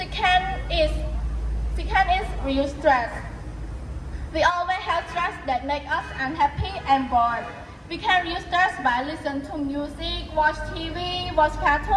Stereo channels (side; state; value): both; identical; correlation 1.00